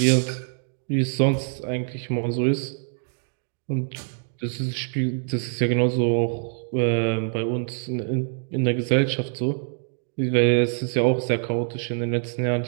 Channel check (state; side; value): silent; left; 62 dB below the other